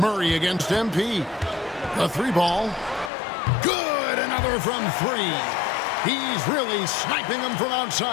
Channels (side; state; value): right; drops out; at 3.1 s